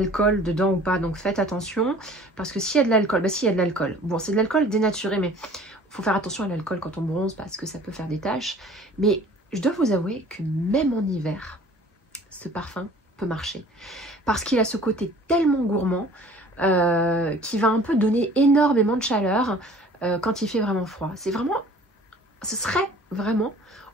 dedans ou pas, donc faites attention. Parce que s'il y a de l'alcool, bah s'il y a de l'alcool. Bon, c'est de l'alcool dénaturé, mais il faut faire attention à l'alcool quand on bronze parce que ça peut faire des taches. Mais je dois vous avouer que même en hiver, ce parfum peut marcher. Parce qu'il a ce côté tellement gourmand qui va un peu donner énormément de chaleur quand il fait vraiment froid. C'est vraiment, ce serait vraiment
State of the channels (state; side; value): normal; both; correlation 0.49